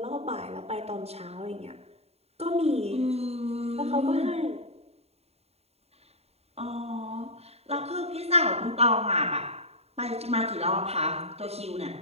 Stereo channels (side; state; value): left; late; 0.30 ms